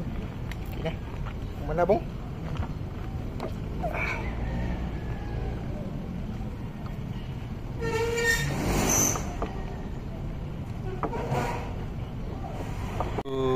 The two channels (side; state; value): both; identical; correlation 1.00